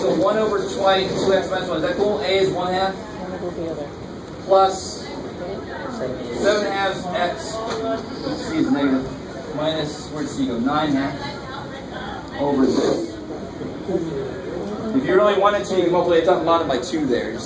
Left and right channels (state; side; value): identical; both; correlation 1.00